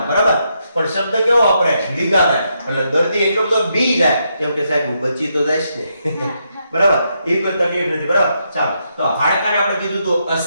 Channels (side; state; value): both; inverted; correlation -0.80